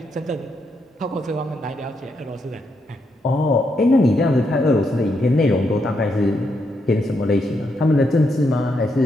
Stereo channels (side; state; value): both; normal; correlation 0.80